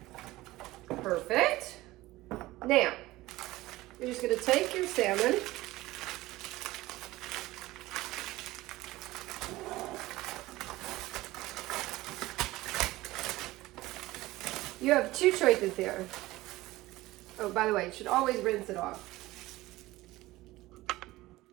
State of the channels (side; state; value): left; quieter; 18.2 dB